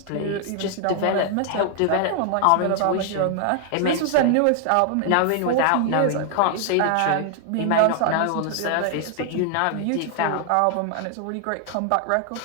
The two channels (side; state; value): both; different; correlation 0.00